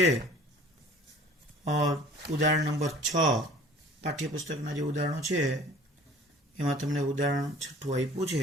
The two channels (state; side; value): normal; both; correlation 0.48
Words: ઉદાહરણ નંબર 6 પાઠ્યપુસ્તકના જે ઉદાહરણો છે એમાં તમને ઉદાહરણ 6 આપ્યું છે.